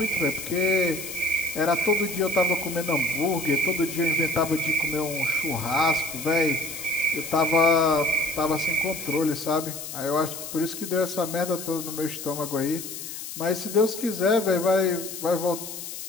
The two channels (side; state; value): left; noise; hiss, 9 dB below the sound